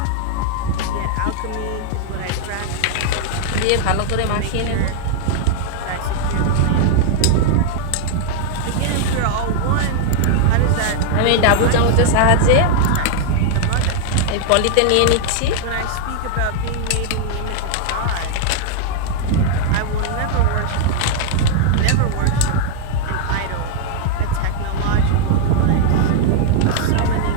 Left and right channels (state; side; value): different; both; correlation 0.00